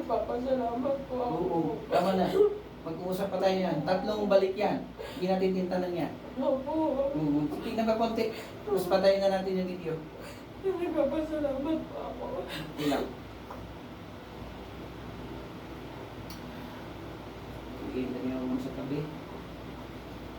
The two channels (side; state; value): both; identical; correlation 1.00